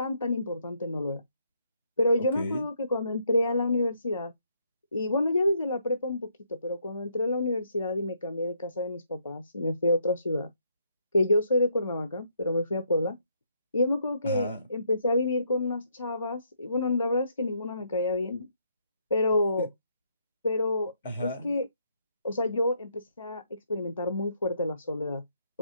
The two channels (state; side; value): inverted; both; correlation -0.72